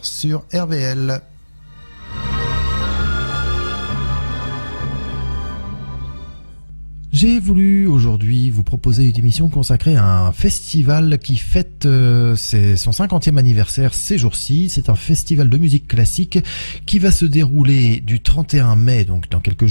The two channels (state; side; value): inverted; both; correlation -1.00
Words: sur RVL. J'ai voulu aujourd'hui vous proposer une émission consacrée à un festival qui fête son 50e anniversaire ces jours-ci. C'est un festival de musique classique qui va se dérouler du 31 mai, donc dans quelques